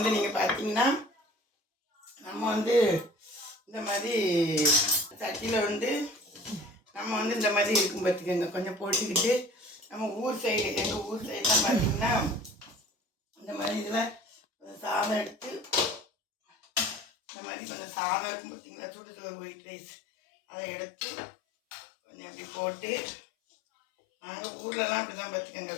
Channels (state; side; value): drops out; right; at 17.1 s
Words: நீங்கள் பார்த்தீங்கன்னா நம்ம வந்து இந்த மாதிரி சட்டியில் வந்து நம்ம வந்து இந்த மாதிரி இருக்கும் பார்த்துக்கோங்க. கொஞ்சம் போட்டுக்கிட்டு நம்ம ஊர் சைடு எங்கள் ஊர் சைடெலாம் பார்த்திங்கன்னா இந்த மாதிரி இதில் சாதம் எடுத்து இந்த மாதிரி கொஞ்சம் சாதம் இருக்கும் பார்த்திங்களா, சுடு சோறு ஒயிட் ரைஸ் அதை எடுத்து கொஞ்சம் இப்படி போட்டு நாங்கள் ஊர்லலாம் அப்படி தான் பார்த்துக்கோங்க.